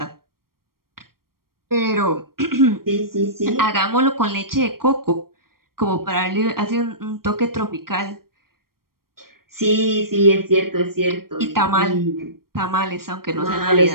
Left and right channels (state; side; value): late; left; 0.93 ms